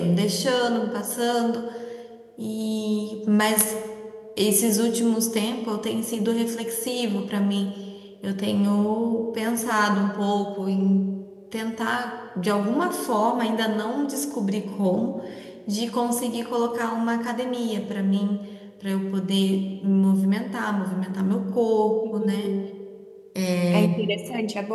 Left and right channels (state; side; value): identical; both; correlation 1.00